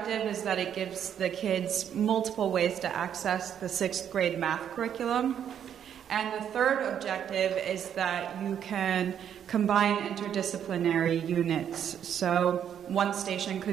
is that it gives the kids multiple ways to access the 6th grade math curriculum. And the third objective is that you can combine interdisciplinary units. So one station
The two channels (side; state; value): left; quieter; 9.1 dB